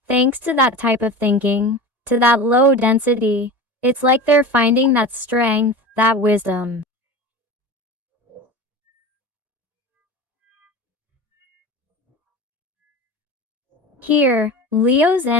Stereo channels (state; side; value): late; left; 1.9 ms